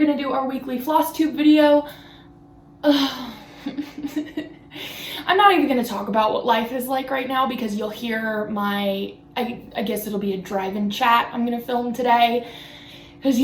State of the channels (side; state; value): both; identical; correlation 1.00